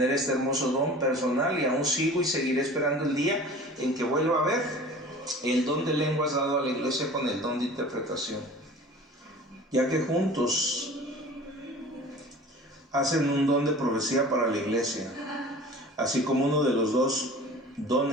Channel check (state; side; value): normal; both; correlation 0.42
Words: este hermoso don personal, y aún sigo y seguiré esperando el día en que vuelva a ver el don de lenguas dado a la iglesia con el don de interpretación, ya que juntos hacen un don de profecía para la iglesia, así como uno de los 2